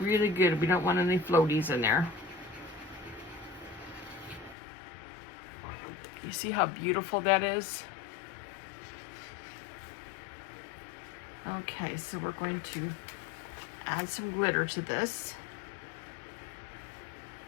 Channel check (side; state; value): right; drops out; at 4.5 s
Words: good. We don't want any floaties in there. You see how beautiful that is? Okay, so we're going to add some glitter to this.